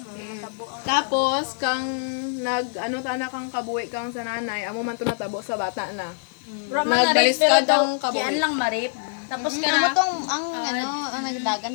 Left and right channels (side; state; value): right; silent; digital silence